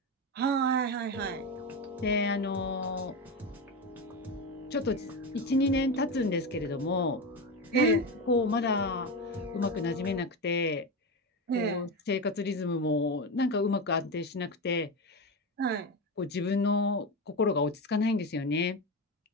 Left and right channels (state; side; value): normal; both; correlation 0.17